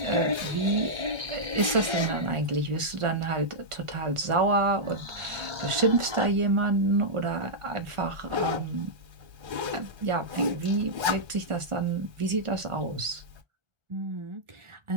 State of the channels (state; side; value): late; left; 1.4 ms